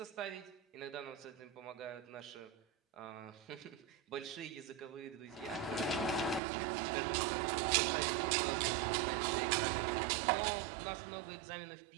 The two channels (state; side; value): drops out; left; at 6.4 s